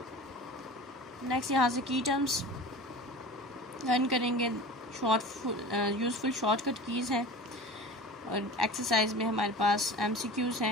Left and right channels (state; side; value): normal; both; correlation 0.36